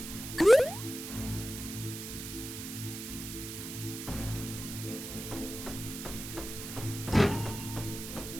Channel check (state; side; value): noise; right; hiss, 8 dB below the sound